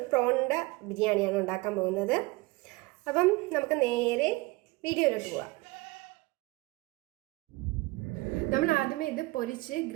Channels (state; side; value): quieter; left; 22.7 dB